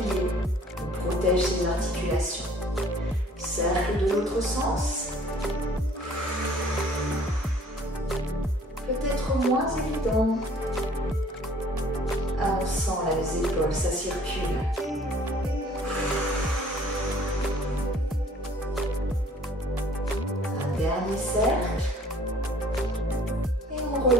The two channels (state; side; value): normal; both; correlation 0.55